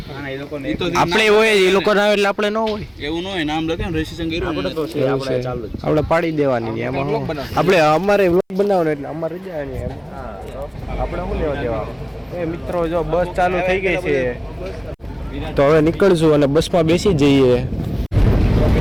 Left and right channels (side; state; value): both; identical; correlation 1.00